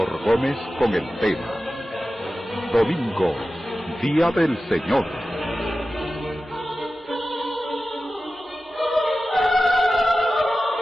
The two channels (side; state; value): both; normal; correlation 0.94